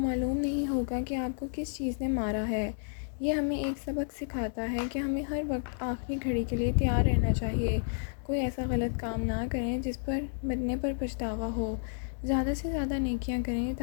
نہیں ہوگا کہ آپ کو کس چیز نے مارا ہے۔ یہ ہمیں ایک سبق سکھاتا ہے کہ ہمیں ہر وقت آخری گھڑی کے لیے تیار رہنا چاہیے۔ کوئی ایسا غلط کام نہ کریں جس پر مرنے پر پچھتاوا ہو۔ زیادہ سے زیادہ نیکیاں کریں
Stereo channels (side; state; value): right; silent; digital silence